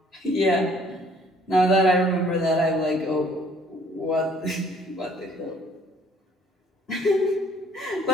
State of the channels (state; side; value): normal; both; correlation 0.59